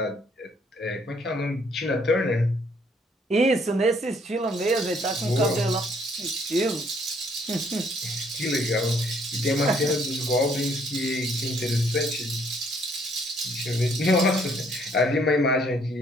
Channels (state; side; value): normal; both; correlation 0.65